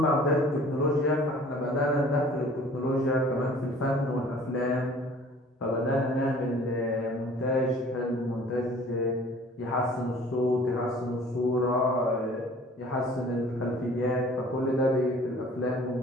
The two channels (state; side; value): normal; both; correlation 0.50